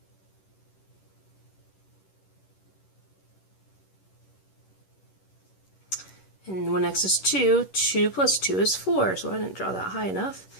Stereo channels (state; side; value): late; right; 11 ms